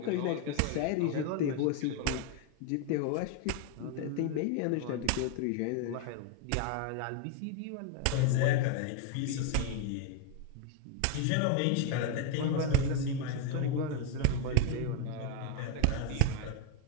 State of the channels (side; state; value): both; different; correlation 0.01